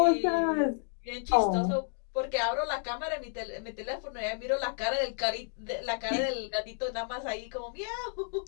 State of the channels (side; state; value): right; silent; 57 dB below the other